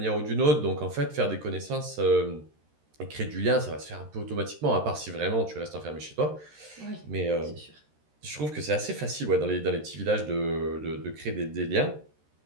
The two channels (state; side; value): late; left; 13 ms